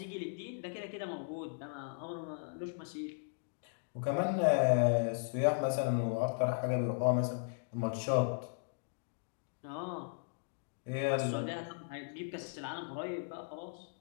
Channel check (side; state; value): right; silent; digital silence